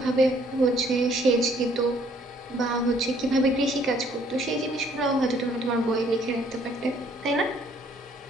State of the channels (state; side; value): normal; both; correlation 0.62